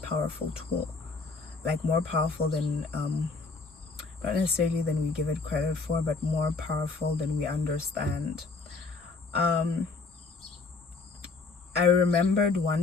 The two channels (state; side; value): quieter; right; 4.1 dB